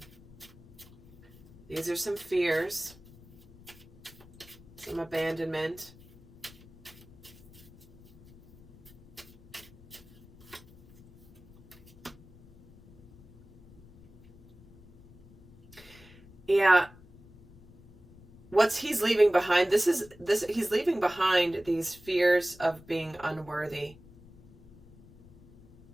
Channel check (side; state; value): left; noise; rumble, 24 dB below the sound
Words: these are some fears, some abandonment. Yeah. What's he's leaving behind, he's leaving behind these fears of being unworthy.